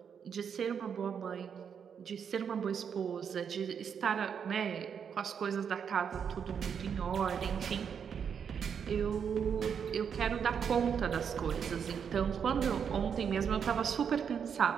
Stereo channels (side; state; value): left; quieter; 7.3 dB